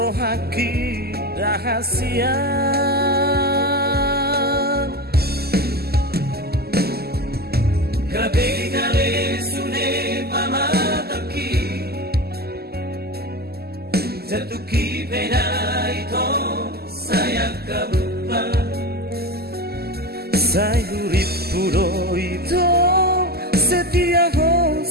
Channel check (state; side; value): late; left; 0.46 ms